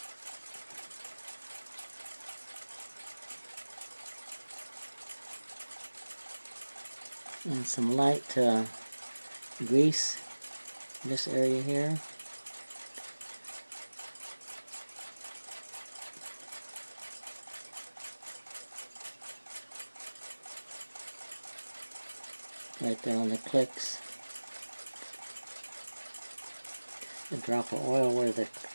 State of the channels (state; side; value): inverted; both; correlation -1.00